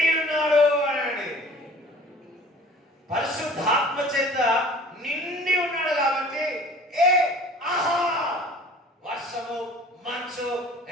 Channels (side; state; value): both; normal; correlation 0.47